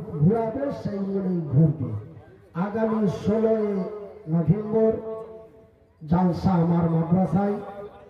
ঘুরাবে সেই মূলেই ঘুরবে। আগামী 16 নভেম্বর জালসা আমার মাদ্রাসায়।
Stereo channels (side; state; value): both; identical; correlation 1.00